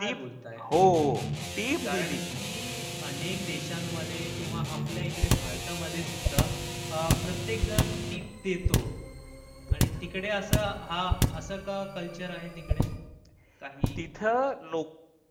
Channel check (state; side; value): identical; both; correlation 1.00